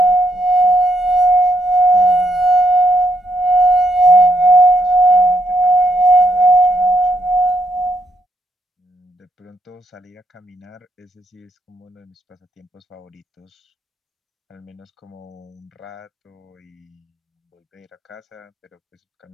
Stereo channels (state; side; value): normal; both; correlation 0.77